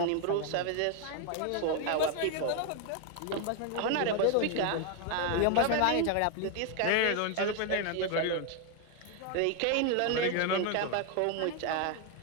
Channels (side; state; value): both; different; correlation 0.01